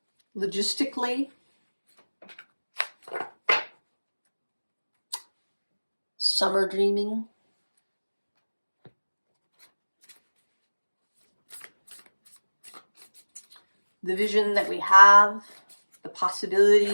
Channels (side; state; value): both; inverted; correlation -1.00